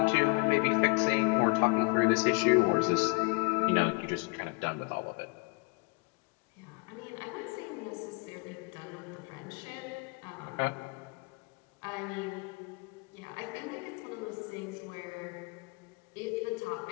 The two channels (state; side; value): quieter; right; 28.9 dB